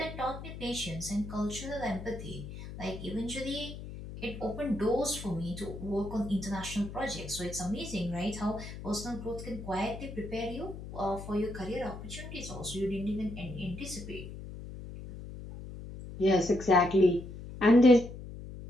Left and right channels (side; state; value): left; noise; hum, 11 dB below the sound